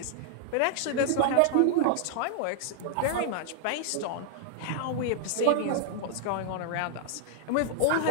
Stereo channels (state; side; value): different; both; correlation -0.01